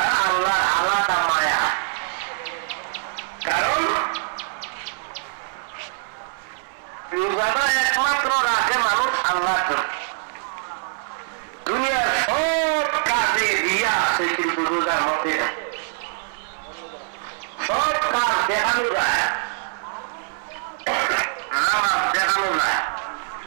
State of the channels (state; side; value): silent; left; 60 dB below the other